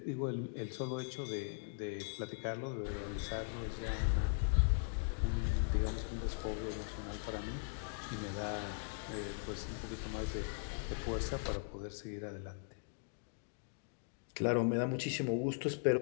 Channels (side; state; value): right; silent; digital silence